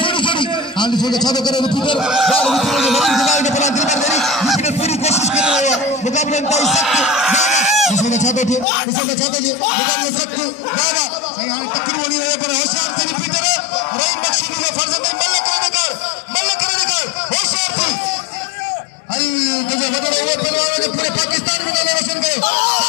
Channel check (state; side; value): drops out; right; at 8.7 s